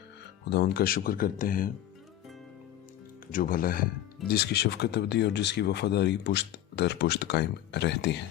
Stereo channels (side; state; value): right; quieter; 12.5 dB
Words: खुदावंद का शुक्र करते हैं जो भला है, जिसकी शफ़क़त अबदी और जिसकी वफ़ादारी पुश्त दर पुश्त कायम रहती